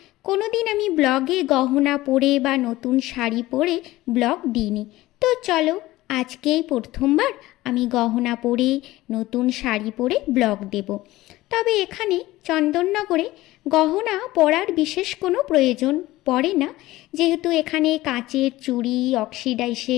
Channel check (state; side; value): quieter; right; 17.5 dB